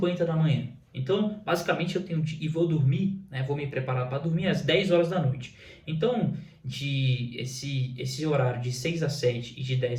da manhã. Então, basicamente eu tenho e vou dormir, vou me preparar para dormir às 10 horas da noite. Então, esse horário de 6 às 7 e de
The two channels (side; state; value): both; identical; correlation 1.00